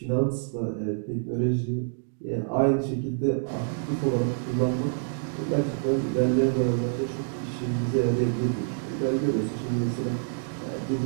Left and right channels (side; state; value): left; silent; digital silence